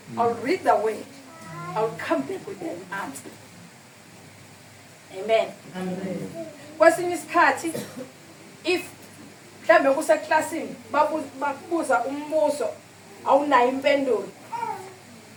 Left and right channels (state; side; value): identical; both; correlation 1.00